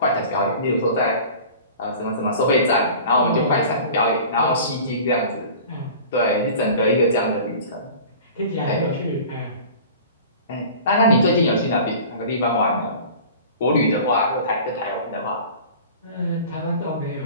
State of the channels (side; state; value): both; inverted; correlation -0.40